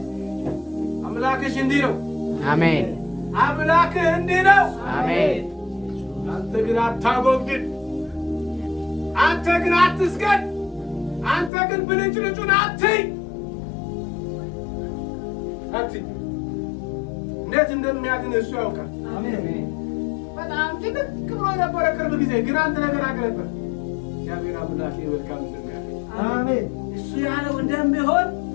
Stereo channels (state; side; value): drops out; right; at 11.5 s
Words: አምላክሽ እንዲህ ነው። አሜን። አምላክህ እንዲህ ነው። አሜን። አንተ ግን አታጎብድድ። አንተ ግን አትስገድ። አንተ ግን ብልጭልጩን አትይ። እንዴት እንደሚያድን እሱ ያውቃል። በጣም ጭንቅ ብሎ ነበረ ቅርብ ጊዜ፣ ግን አንድ ነገር አገለበት። እግዚአብሔር አምላኬ መልካም እንደሚያደርግ አሜን። እሱ ያለው እንደሚሆን